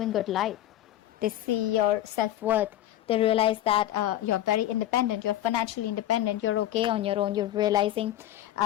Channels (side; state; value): right; quieter; 13.2 dB